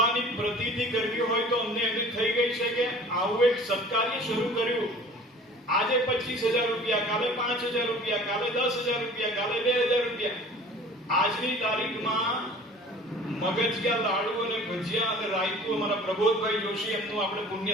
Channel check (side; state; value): both; normal; correlation 0.46